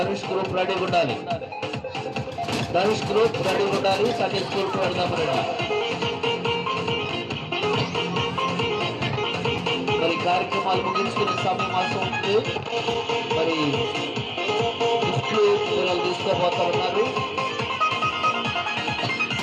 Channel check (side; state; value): both; identical; correlation 1.00